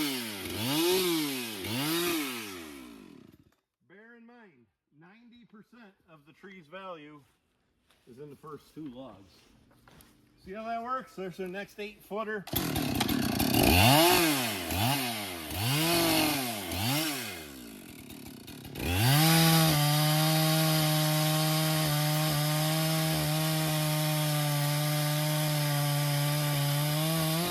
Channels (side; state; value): both; identical; correlation 1.00